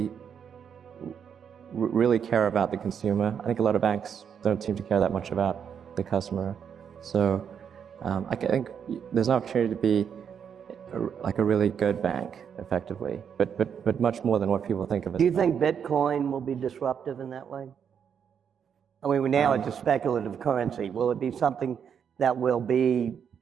care about the consumer. I think a lot of banks don't seem to care that much about the customer. So I think there's an opportunity to be like a really good bank, effectively, but much more than what people think of it. Do you think Bitcoin will be disruptive in that way? I mean, now it's a speculative currency. Will it be something that will be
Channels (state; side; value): quieter; left; 7.6 dB